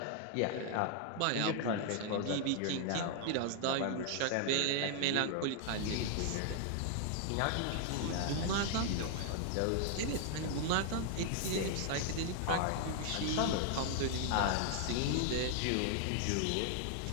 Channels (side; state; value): both; different; correlation 0.00